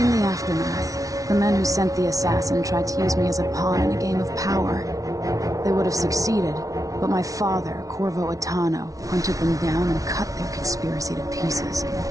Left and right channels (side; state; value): left; late; 0.17 ms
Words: the aftermath, the men who sent the assassin tried to use me as a pawn in a game of power. They would have succeeded, but my father, Corvo Attano, hunted them down and cut their conspiracy to pieces.